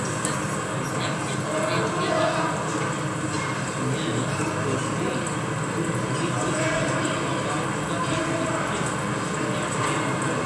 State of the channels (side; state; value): both; identical; correlation 1.00